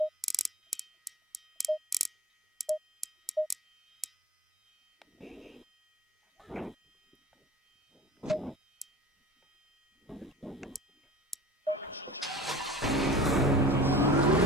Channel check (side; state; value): both; normal; correlation 0.39